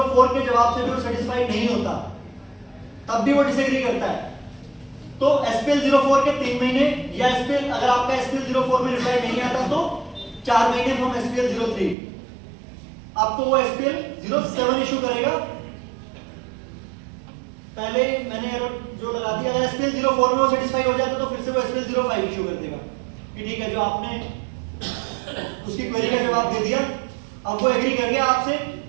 के जवाब से भी वो सेटिस्फाइड नहीं होता, तब भी वो डिसएग्री करता है, तो SPL 04 के 3 महीने, या SPL अगर आपका SPL 04 में रिप्लाई नहीं आता तो 4 महीने फ्रॉम SPL 03 आपको वो SPL 07 इशू करेगा। पहले मैंने जो लगा दिया, अगर SPL 04 में वो सेटिस्फाई हो जाता तो फिर से वो SPL 05 इशू कर देगा कि ठीक है, जो आपने उसकी क्वेरी का जवाब दे दिया, अब वो एग्री कर गया आपसे,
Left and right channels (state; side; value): drops out; left; at 12.0 s